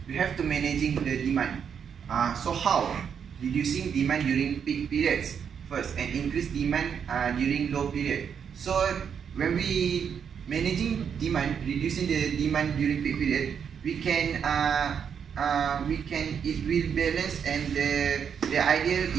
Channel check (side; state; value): left; quieter; 7.4 dB